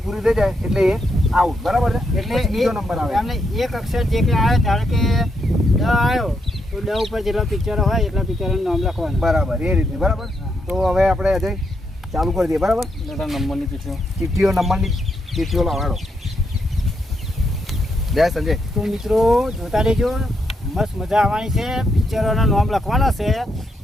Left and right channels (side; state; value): both; normal; correlation 0.80